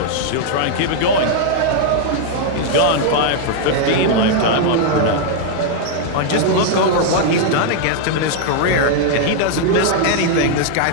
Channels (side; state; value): both; different; correlation 0.00